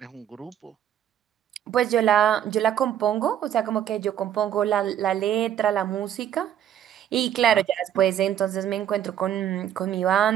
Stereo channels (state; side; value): quieter; left; 10.4 dB